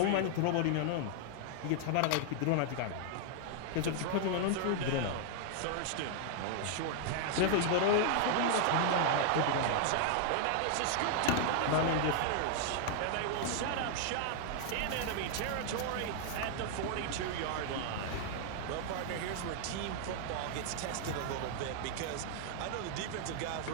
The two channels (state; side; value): different; both; correlation 0.00